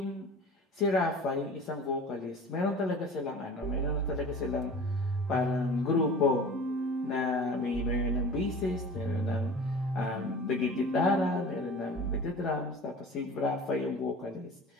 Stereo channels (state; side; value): normal; both; correlation 0.40